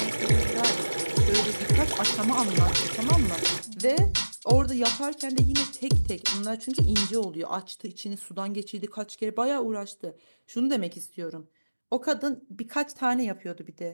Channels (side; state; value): both; inverted; correlation -1.00